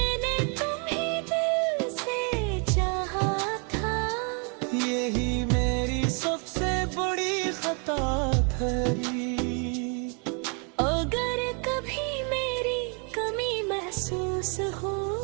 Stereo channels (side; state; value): left; quieter; 37.1 dB